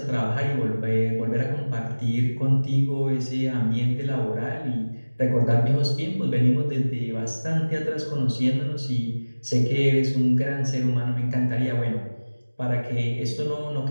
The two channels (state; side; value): inverted; both; correlation -1.00